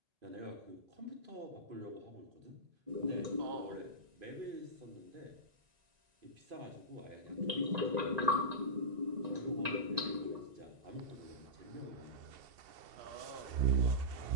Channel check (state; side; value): late; left; 1.9 ms